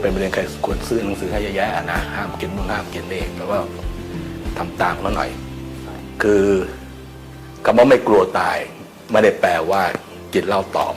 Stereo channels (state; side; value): identical; both; correlation 1.00